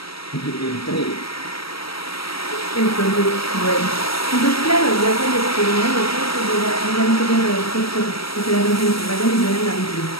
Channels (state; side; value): late; right; 0.75 ms